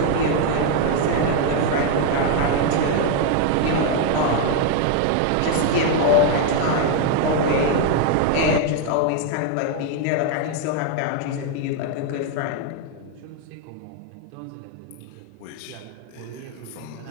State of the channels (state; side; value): different; both; correlation 0.01